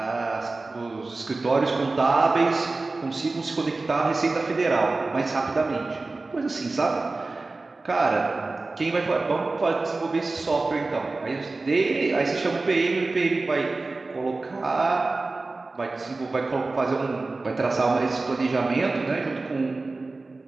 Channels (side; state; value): left; quieter; 3.5 dB